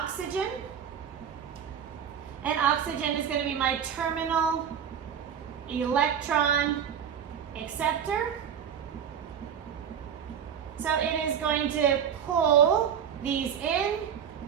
And oxygen is going to be my terminal electron acceptor. So it is going to pull these in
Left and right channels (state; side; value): quieter; left; 8.2 dB